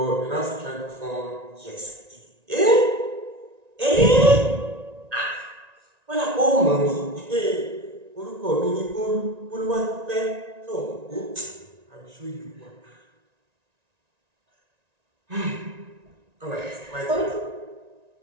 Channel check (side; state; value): left; late; 1.9 ms